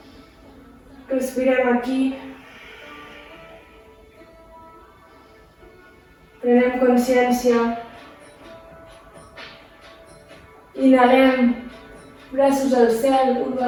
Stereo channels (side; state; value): both; identical; correlation 1.00